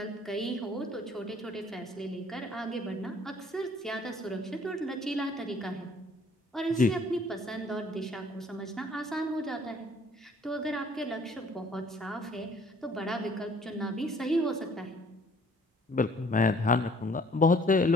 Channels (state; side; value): normal; both; correlation 0.58